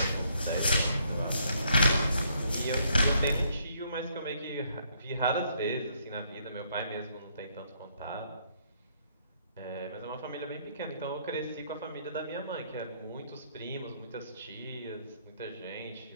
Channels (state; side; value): inverted; both; correlation -0.69